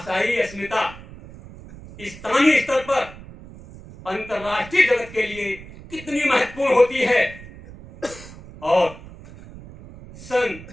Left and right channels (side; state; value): right; noise; rumble, 17 dB below the sound